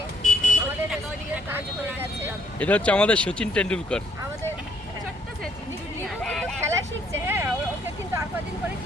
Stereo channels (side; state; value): both; normal; correlation 0.68